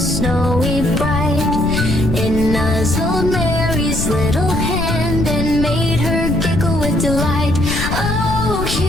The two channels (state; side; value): noise; left; rumble, 3 dB below the sound